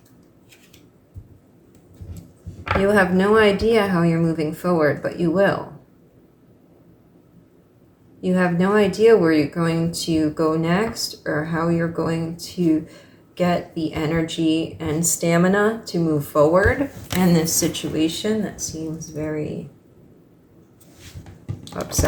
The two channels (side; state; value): both; identical; correlation 1.00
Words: You have no idea how you're moving forward, but you will. You have no idea where you're going to go next or how you're going to get the energy and stamina to move forward in this situation that seems very